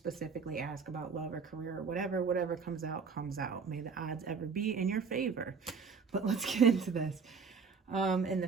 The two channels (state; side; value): quieter; left; 5.5 dB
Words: ask about love or career or whatever. Whatever comes out, comes out. May the odds ever be in your favor. But let's get into this. In the